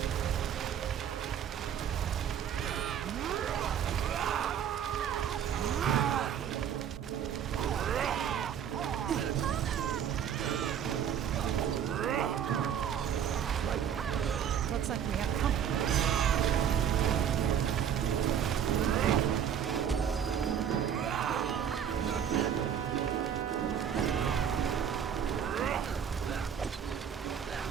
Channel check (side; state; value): left; quieter; 8.7 dB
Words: Looks like we have company.